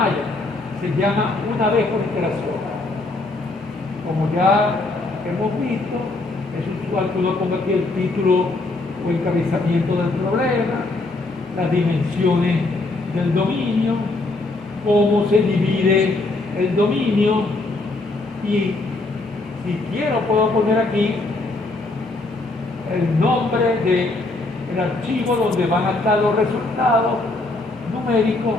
se llama una vez por iteración. Como ya hemos visto, es usual que uno ponga aquí el título o encabezamiento del problema, las dimensiones del dominio, cómo se divide el dominio, y si quiero puedo poner aquí el nombre del archivo donde van a estar los resultados numéricos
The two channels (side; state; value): right; quieter; 3.1 dB